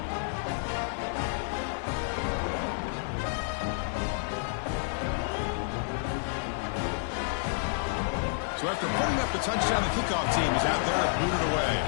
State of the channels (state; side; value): silent; right; 58 dB below the other